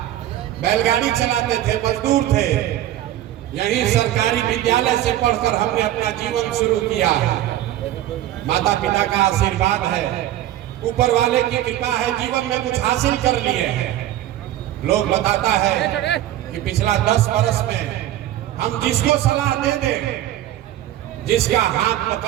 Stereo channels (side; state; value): left; quieter; 13.4 dB